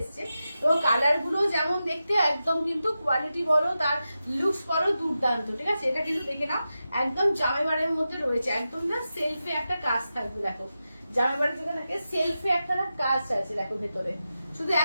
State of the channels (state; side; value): inverted; both; correlation -0.91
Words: এবং কালার গুলো যেমন দেখতে একদম কিন্তু কোয়ালিটি বলো, তার লুকস বলো দুর্দান্ত। ঠিক আছে, এটা কিন্তু দেখে নাও, একদম জামাইবারের মধ্যে রয়েছে, একদম না সেলফে একটা কাজ থাকবে, দেখো জামাইবাড়ি থেকে থাকে সেলফে একটা না কাজ আছে, দেখো ভেতরে শুধু